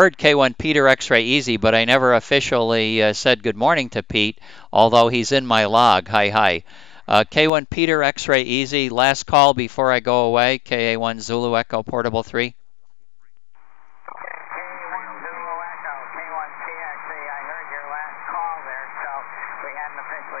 K1 Peter X-Ray Easy, but I never officially said good morning to Pete, although he's in my log. Hi. K1 Peter X-Ray Easy, last call before I go away. KA1 Zulu Echo Portable 3. K1 Zulu Echo, K1 PXE. I heard your last call there, so we haven't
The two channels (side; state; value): right; drops out; at 7.5 s